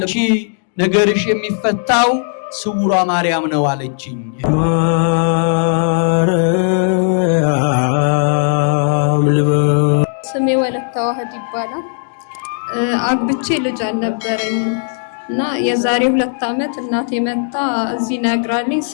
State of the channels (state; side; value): silent; right; digital silence